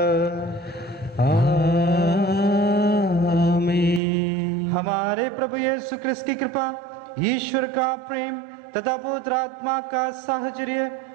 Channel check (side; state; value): left; drops out; at 4.0 s